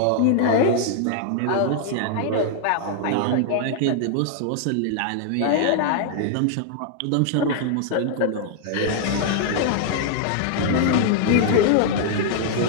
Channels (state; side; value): different; both; correlation -0.01